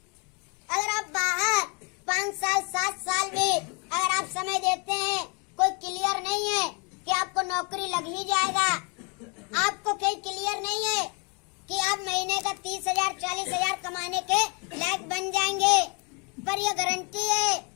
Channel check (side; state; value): right; quieter; 33.8 dB